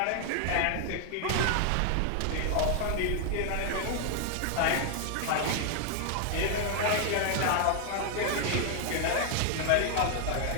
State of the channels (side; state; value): both; different; correlation 0.00